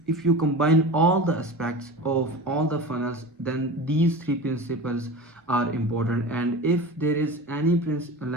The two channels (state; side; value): normal; both; correlation 0.32